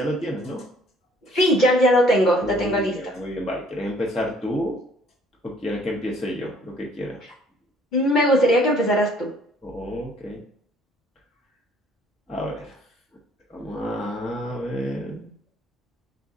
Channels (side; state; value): both; normal; correlation 0.59